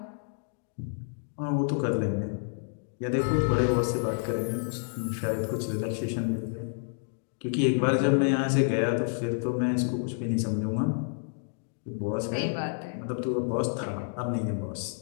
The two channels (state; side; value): silent; right; digital silence